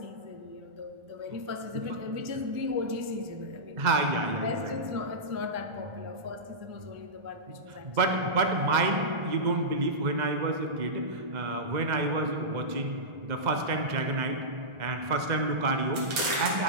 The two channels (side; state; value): left; late; 1.4 ms